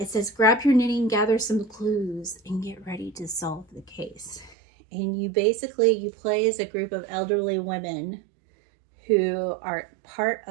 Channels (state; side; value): drops out; left; at 4.5 s